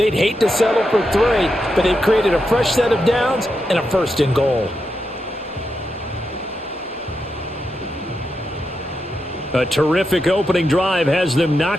hate to settle for 3, but they've created a fresh set of downs and a 1st and goal. A terrific opening drive has them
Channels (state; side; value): normal; both; correlation 0.86